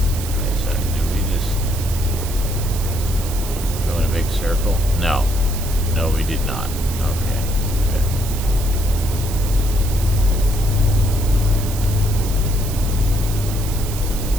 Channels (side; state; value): right; noise; hiss, 10 dB below the sound